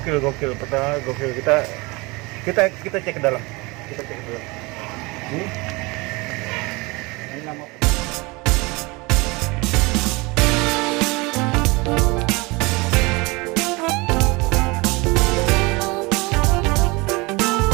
Peternakan gokil. Kita cek ke dalam. Ini nama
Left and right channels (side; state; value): left; quieter; 25.2 dB